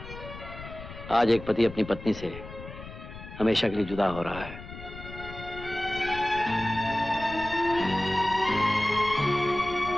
आज एक पति अपनी पत्नी से हमेशा के लिए जुदा हो रहा है।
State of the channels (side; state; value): left; noise; rumble, 13 dB below the sound